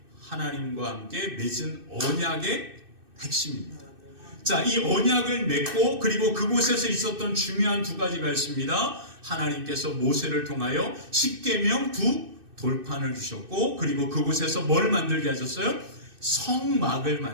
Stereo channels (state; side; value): late; left; 2.6 ms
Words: 하나님과 함께 맺은 언약의 핵심입니다. 자, 이 언약을 맺고 그리고 그곳에서 있었던 중요한 두 가지가 있습니다. 하나님께서 모세를 통하여 십계명 두 돌판을 주셨고, 그리고 그곳에서 뭘 만들게 하셨어요? 성막을